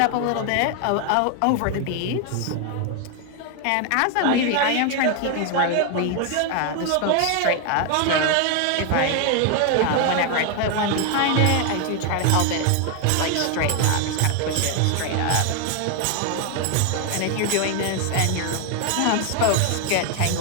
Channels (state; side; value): different; both; correlation 0.01